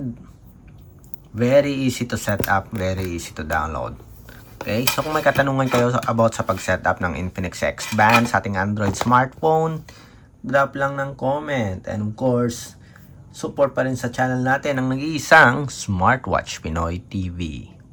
very easy to set up. Very easy to download. Okay? So kung may katanungan kayo about sa pag-set up ng Infinix X Band sa ating Android smartphone, drop lang ng comment. And of course, support pa rin sa channel natin ang nag-iisang Smartwatch Pinoy TV.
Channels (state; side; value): identical; both; correlation 1.00